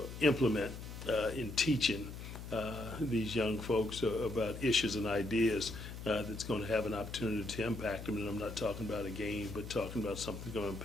implement in teaching these young folks about issues and ideas that's going to have an opportunity to impact them, and I'm not talking about a game, but talking about something that's going to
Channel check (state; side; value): noise; left; hum, 10 dB below the sound